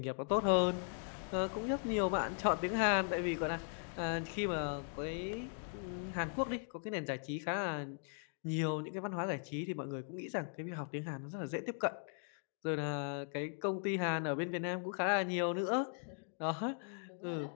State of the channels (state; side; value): silent; right; 52 dB below the other